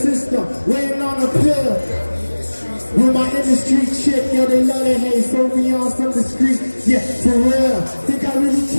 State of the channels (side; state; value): both; inverted; correlation -1.00